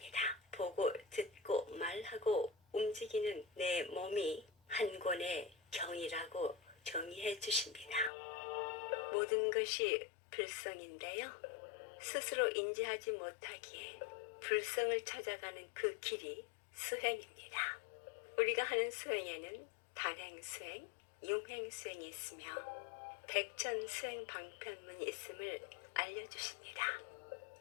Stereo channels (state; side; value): drops out; right; at 8.1 s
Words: 보고 듣고 말하고 움직이는 내 몸이 한 권의 경이라고 정의해 주십니다. 모든 것이 불성인데요. 스스로 인지하지 못하기에 불성을 찾아가는 그 길이 수행입니다. 우리가 하는 수행에는 단행수행, 융행수행이 있으며 백천수행 방편문이 있음을 알려주십니다.